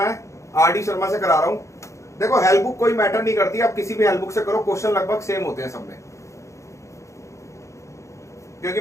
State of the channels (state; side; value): late; right; 0.14 ms